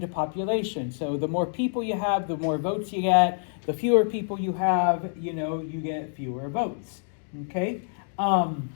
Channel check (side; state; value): right; silent; digital silence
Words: to population. So the more people you have, the more votes you get. The fewer people you have, you get fewer votes. Okay? So